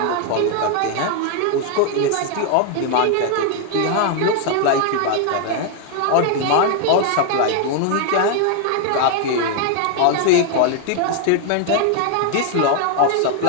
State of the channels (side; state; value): both; different; correlation 0.00